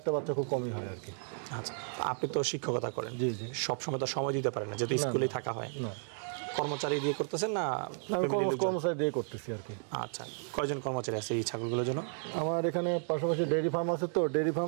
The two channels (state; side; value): silent; left; 56 dB below the other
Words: বাচ্চা খুব কমই হয় আর কি। আচ্ছা, আপনি তো শিক্ষকতা করেন। জি জি। সবসময় তো সময় দিতে পারেন না, যেহেতু স্কুলেই থাকা হয়। না, কর্মচারী দিয়ে করতেছেন না? আমি কর্মচারী দিয়ে করতেছি আর কি। আচ্ছা, কয়জন কর্মচারী আছে এই ছাগলগুলোর জন্য? আমার এখানে পাশাপাশি ডেইরি ফার্ম আছে, তো ডেইরি ফার্ম